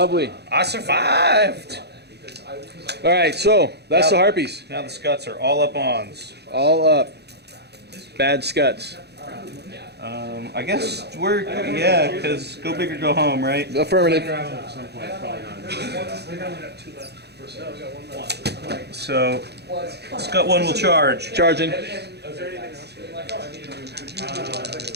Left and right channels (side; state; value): left; late; 0.48 ms